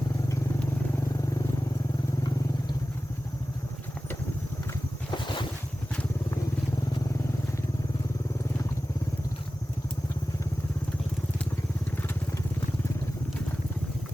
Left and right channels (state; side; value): normal; both; correlation 0.95